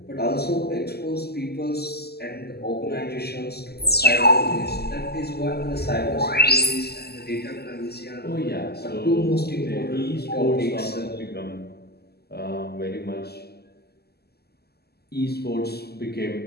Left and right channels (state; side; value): late; right; 0.46 ms